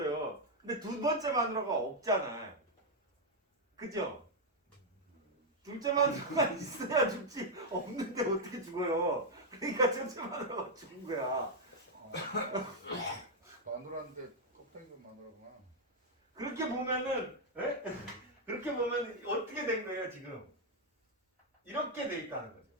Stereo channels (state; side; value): normal; both; correlation 0.00